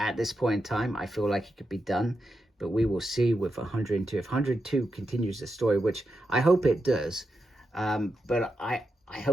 this point in time, I feel like it could be done, but we will see with 102. If 102 continues the story, which I hope it does, but I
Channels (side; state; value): both; normal; correlation 0.87